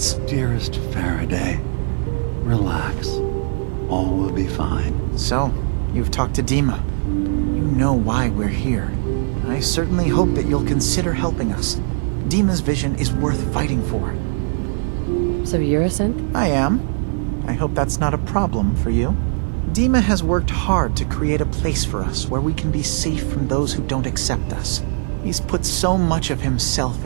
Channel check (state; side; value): silent; left; digital silence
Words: Dearest Faraday, relax. All will be fine. So, you've talked to Dima. You know why we're here. I certainly hope that you'll consider helping us. Dima's vision is worth fighting for. So you're a synth? I am. I hope that's not a problem for you. Dima has worked hard to create a place for us where we can be safe from those who don't accept us. He's put so much of himself